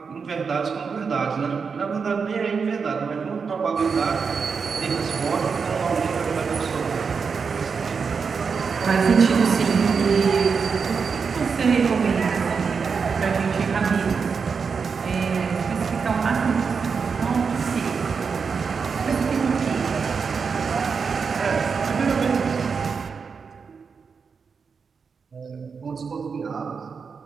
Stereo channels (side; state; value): left; quieter; 5.6 dB